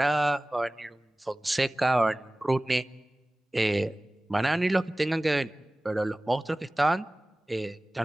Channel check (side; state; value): both; normal; correlation 0.98